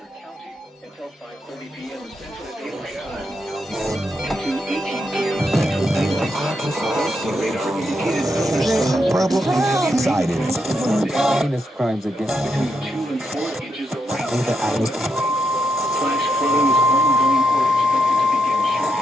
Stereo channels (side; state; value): both; normal; correlation 0.82